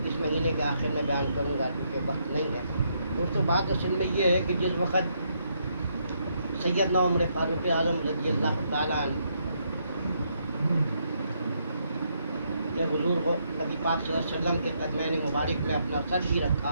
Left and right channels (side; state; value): both; inverted; correlation -0.75